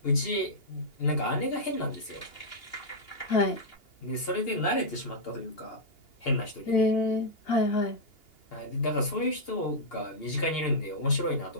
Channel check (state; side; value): late; right; 2.8 ms